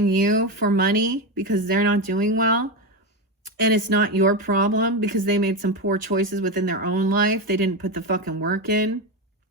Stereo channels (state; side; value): normal; both; correlation 0.14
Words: you for money because they're not doing well. And it's not your problem because they made some poor choices within their own life. They didn't put the fucking work in.